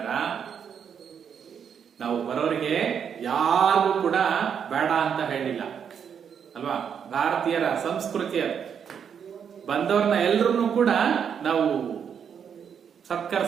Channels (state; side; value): quieter; left; 7.6 dB